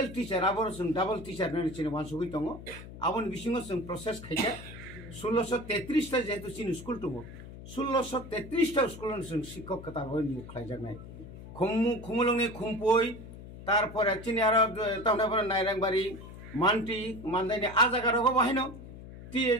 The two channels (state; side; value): noise; left; hum, 14 dB below the sound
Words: টিচার আবার जों ডাবল টিচার নানি চিনি ওয়ান সুগै দङ আপনি বিসিङ जों প্রসেস খাইকা 1633 টা যেহেতু চিনি স্কুল দङ 1633 টা স্কুল जों শিক্ষক কথা হই নিয়োগ খাইজানাই খুমুলংনি খুমপই তারপরে চিনি আর তাহলে নাইরাংবাড়ি মানটি মানদাইনি আ জায়গা রগো বাহিনো টি